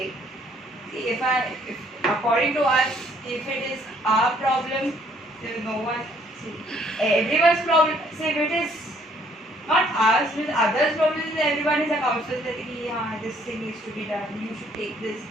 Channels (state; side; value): normal; both; correlation 0.64